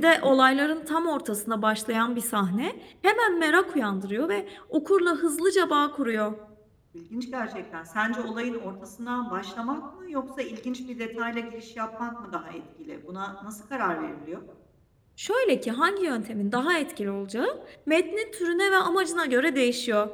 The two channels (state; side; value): identical; both; correlation 1.00